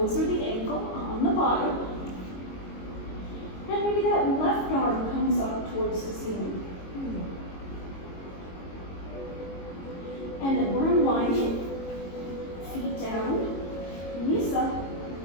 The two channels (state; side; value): late; right; 22 ms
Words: or the ankle on the bottom. And maybe that left arm comes up towards the ceiling. And then we're unwinding. Feet down, knees up.